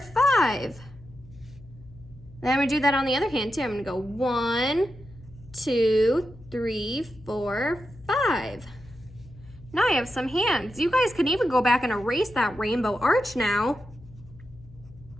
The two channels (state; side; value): noise; left; hum, 21 dB below the sound